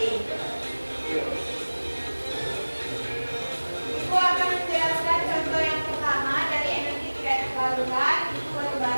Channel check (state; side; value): inverted; both; correlation -1.00